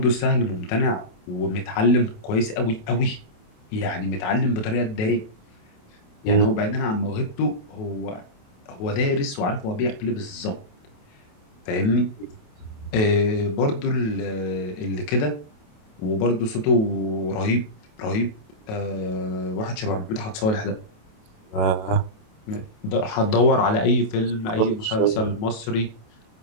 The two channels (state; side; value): late; right; 28 ms